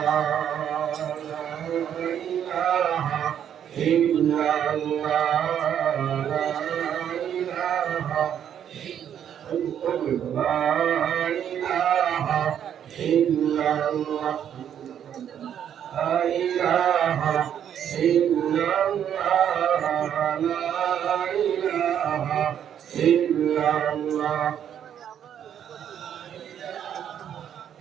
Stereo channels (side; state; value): left; quieter; 9.4 dB